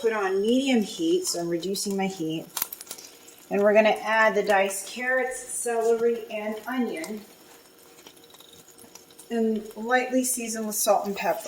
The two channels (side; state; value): both; identical; correlation 1.00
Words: on medium heat, so I'm reducing my heat. And we're going to add the diced carrots, celery, and onion. And lightly season with salt and